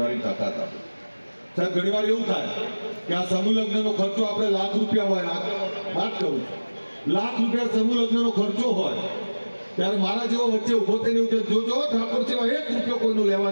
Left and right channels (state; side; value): inverted; both; correlation -1.00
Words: તાકાત આપે. સાહેબ ઘણી વાર એવું થાય કે આ સમૂહ લગ્નનો ખર્ચો આપણે લાખ રૂપિયા હોય, વાત કરું લાખ રૂપિયા સમૂહ લગ્નનો ખર્ચો હોય ત્યારે મારા જેવો વચ્ચે ઉભો થઈને એવું કે જોજો ઠાકોર સેવા 1 રૂપિયો કોઈનું